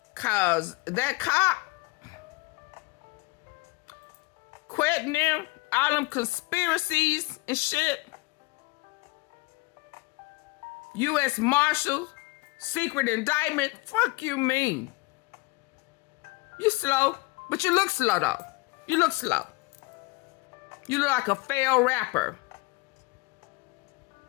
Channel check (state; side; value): quieter; right; 24.3 dB